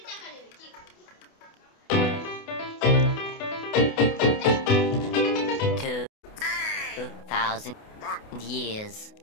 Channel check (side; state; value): right; late; 28 ms